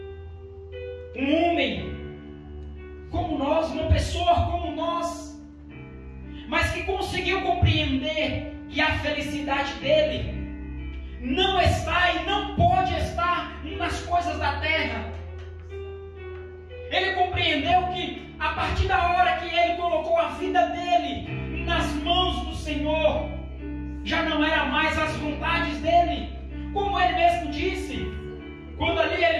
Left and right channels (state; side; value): identical; both; correlation 1.00